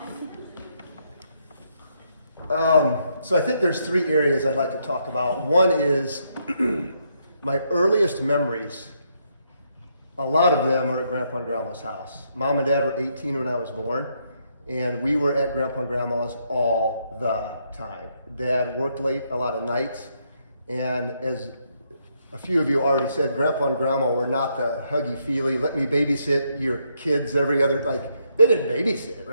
So I think there's 3 areas I'd like to talk about. One is my earliest memories. A lot of them are at Grandpa and Grandma's house. Mom and Dad were 18 when I was born, and we were at Grandpa and Grandma's all the time. Dad worked late a lot of nights, and as a few of you already said, Grandpa and Grandma were not the huggy-feely, let me babysit your kids every other, like, they didn't babysit,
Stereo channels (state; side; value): inverted; both; correlation -0.76